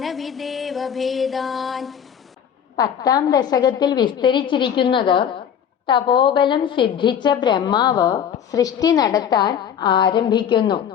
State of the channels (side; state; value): right; quieter; 8.5 dB